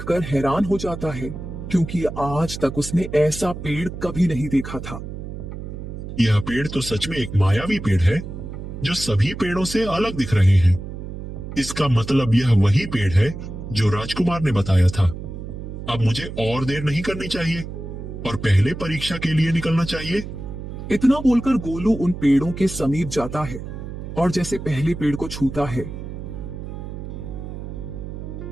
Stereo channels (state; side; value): noise; right; hum, 9 dB below the sound